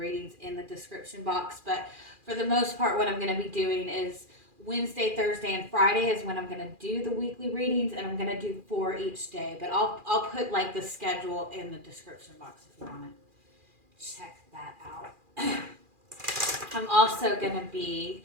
in the description box, but for the most part what I'm going to be doing is Wednesday, Thursday, and Friday is when I'm going to do the weekly readings, and I'm going to do 4 each day. But I'll put like the schedule in the description box if you want to check that out. I'm also going to be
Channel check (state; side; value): late; left; 2.4 ms